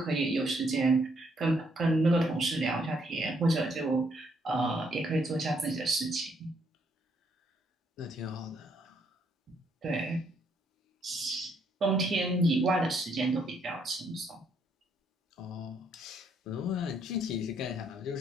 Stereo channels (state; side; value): normal; both; correlation 0.71